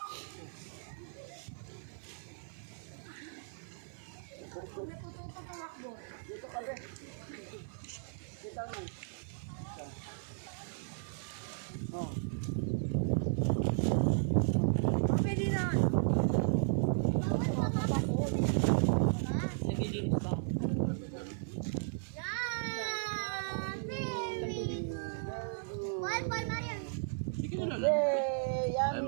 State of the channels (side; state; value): left; silent; 54 dB below the other